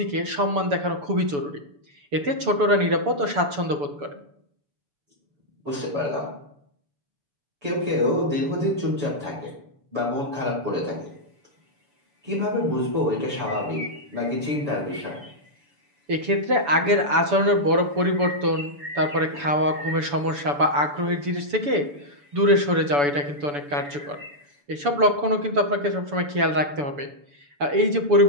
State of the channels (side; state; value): left; late; 7.0 ms